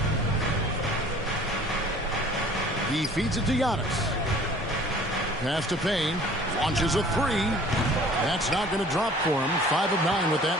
He feeds it to Giannis. Pass to Payne, launches a 3. That's not going to drop for him. 5 of 9 with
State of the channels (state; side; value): normal; both; correlation 0.50